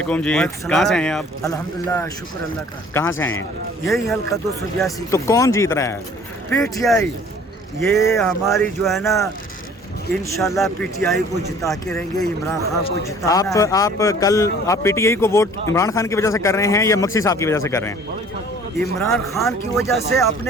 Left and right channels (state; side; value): normal; both; correlation 0.51